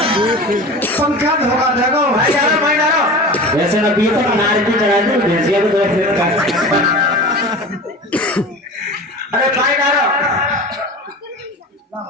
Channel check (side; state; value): both; normal; correlation 0.33